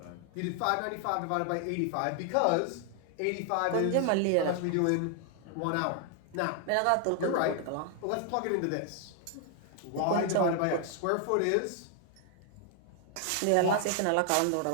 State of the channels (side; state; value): both; different; correlation 0.00